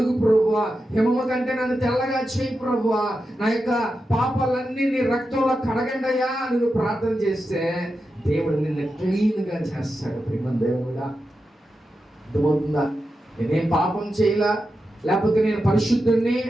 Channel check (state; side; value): normal; both; correlation 0.89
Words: ప్రభువా, హిమము కంటే నన్ను తెల్లగా చేయి ప్రభువా, నా యొక్క పాపాలన్నీ నీ రక్తంలో కడగండయ్యా అని నువ్వు ప్రార్థన చేస్తే దేవుడు నిన్ను క్లీన్గా చేస్తాడు. ప్రేమ దేవుడా. అర్థమవుతుందా? నేనేం పాపం చేయలా, లేకపోతే నేను పరిశుద్ధుడిని